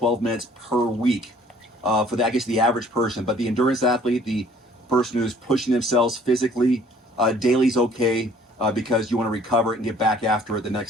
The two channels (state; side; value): normal; both; correlation 0.56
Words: minutes per week for the, I guess, the average person. But the endurance athlete, the person who's pushing themselves physically, daily is okay because you want to recover and get back after it the